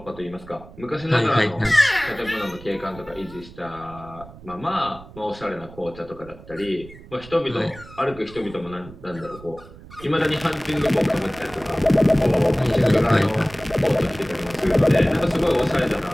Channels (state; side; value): noise; right; rumble, 19 dB below the sound